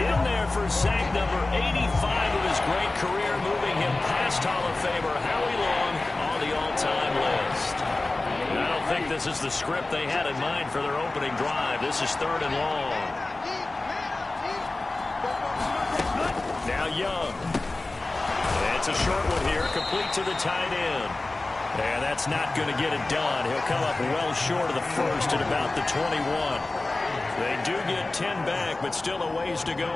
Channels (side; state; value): right; quieter; 3.1 dB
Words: in there for sack number 85 of his great career, moving him past Hall of Famer Howie Long on the all-time list. And I don't think this is the script they had in mind for their opening drive. This is 3rd and long. Now Young. And it's a short one here, complete to the tight end. And that's not going to get it done. He'll come up well short of the first at about the 21. They do get 10 back, but still a ways to go